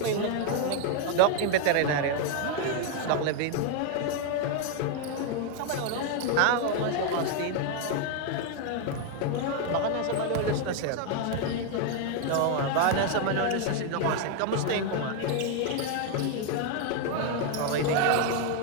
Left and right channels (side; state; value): both; different; correlation 0.01